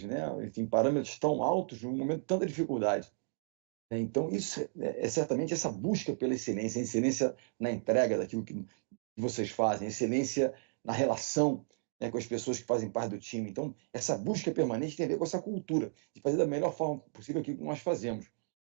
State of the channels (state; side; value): silent; left; digital silence